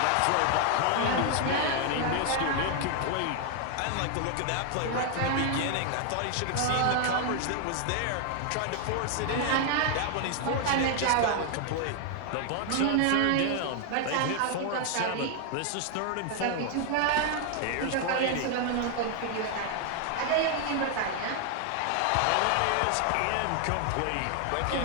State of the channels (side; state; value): both; different; correlation 0.00